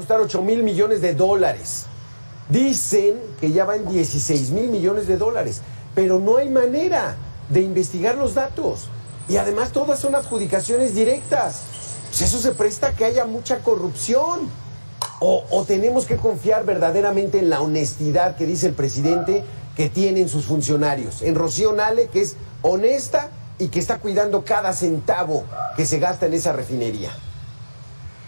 $8,000 millones. Dicen que ya va en $16,000 millones, pero no hay manera de investigar los datos. Y además todas son adjudicaciones directas. Pues eso se presta a que haya mucha corrupción. O tenemos que confiar verdaderamente en la honestidad que dice el presidente que tienen sus funcionarios. En Rocío Nale, que es honesta y que está cuidando cada centavo que se gasta en esa refinería.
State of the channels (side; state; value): both; inverted; correlation -1.00